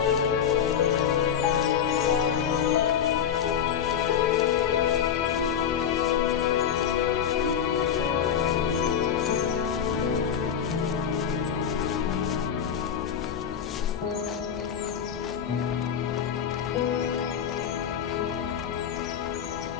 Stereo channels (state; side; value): quieter; right; 8.4 dB